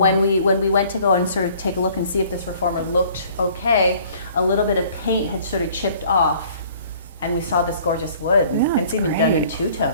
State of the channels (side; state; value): both; inverted; correlation -0.55